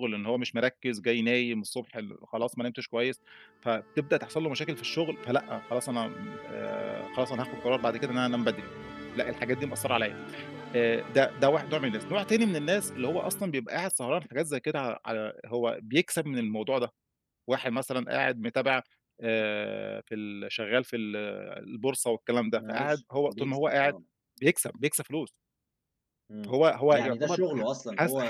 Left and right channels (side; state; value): both; identical; correlation 1.00